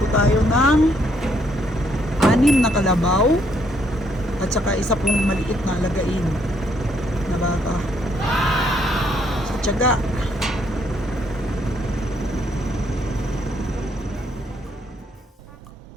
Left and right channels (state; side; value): normal; both; correlation 0.71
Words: tayo ng 6 na kalabaw at saka isa pong maliit na alagain na baka. Tiyaga.